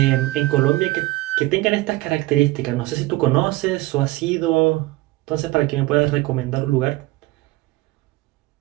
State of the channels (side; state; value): left; quieter; 19.4 dB